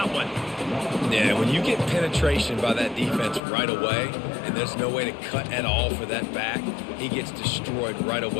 one. Yeah, when you get penetration by that defense right away, and there's no way to cut at all for that back, he gets destroyed right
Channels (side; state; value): right; drops out; at 3.4 s